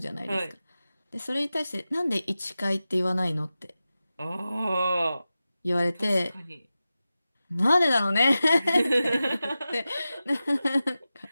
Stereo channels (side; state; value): both; inverted; correlation -0.94